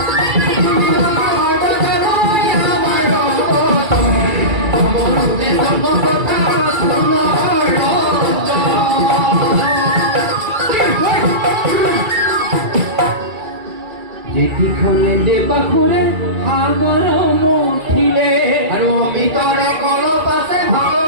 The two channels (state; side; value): late; left; 2.3 ms